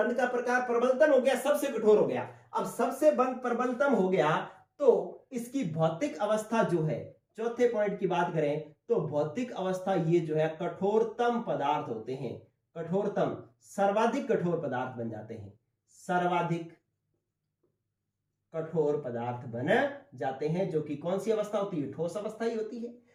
का प्रकार प्रबलतम हो गया, सबसे कठोर हो गया। अब सबसे बंध प्रबलतम हो गया तो इसकी भौतिक अवस्था जो है, चौथे पॉइंट की बात करें तो भौतिक अवस्था ये जो है कठोरतम पदार्थ होते हैं, कठोरतम, सर्वाधिक कठोर पदार्थ बन जाते हैं, सर्वाधिक कठोर पदार्थ बन जाते हैं, जो कि कौन सी अवस्था होती है? ठोस अवस्था ही होती है।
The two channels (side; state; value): both; identical; correlation 1.00